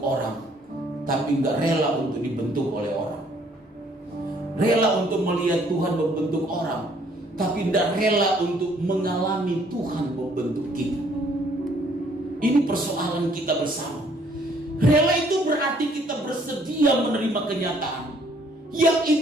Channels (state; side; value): normal; both; correlation 0.63